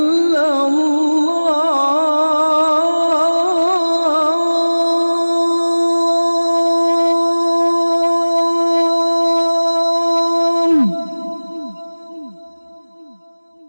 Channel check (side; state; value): both; inverted; correlation -1.00